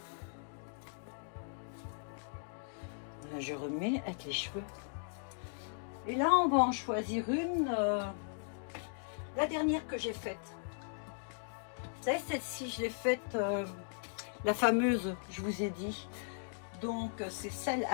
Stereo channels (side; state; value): right; silent; digital silence